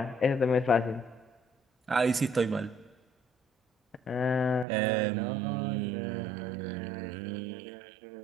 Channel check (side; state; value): left; drops out; at 4.7 s